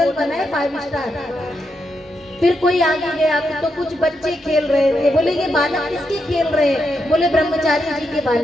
बना है 5 स्टार। फिर कोई आगे गया तो कुछ बच्चे खेल रहे थे। बोले ये बालक किसके खेल रहे हैं? बोले ब्रह्मचारी जी के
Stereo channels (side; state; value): both; normal; correlation 0.83